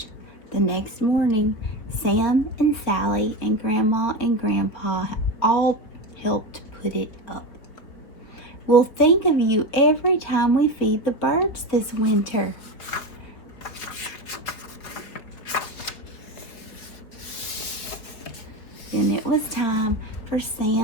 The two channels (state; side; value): late; right; 4.5 ms